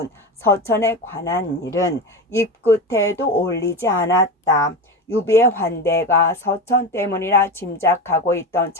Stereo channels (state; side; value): normal; both; correlation 0.23